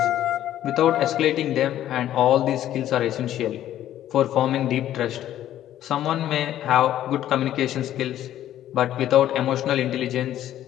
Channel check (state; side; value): quieter; right; 12.2 dB